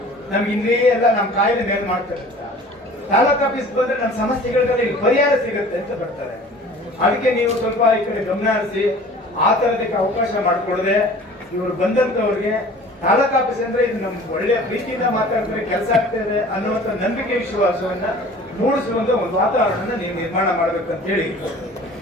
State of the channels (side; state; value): both; normal; correlation 0.46